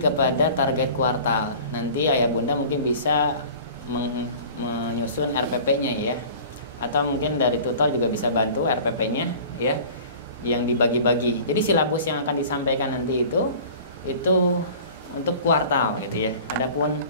target kuartal. Nanti ayah bunda mungkin bisa menyusun RPP-nya ya. Atau mungkin dari tutor juga bisa bantu RPP-nya ya, yang dibagi-bagi. Jadi silabus yang akan disampaikan nanti itu untuk kuartal gitu ya.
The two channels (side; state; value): both; inverted; correlation -0.43